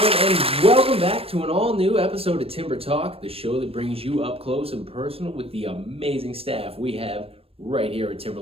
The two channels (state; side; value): late; left; 0.28 ms